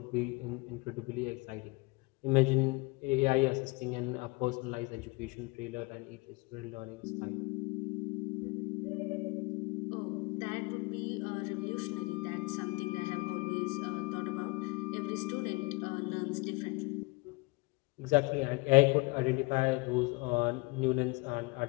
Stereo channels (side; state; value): right; quieter; 25.6 dB